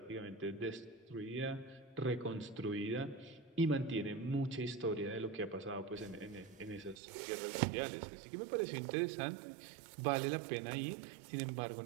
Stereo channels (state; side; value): drops out; left; at 7.0 s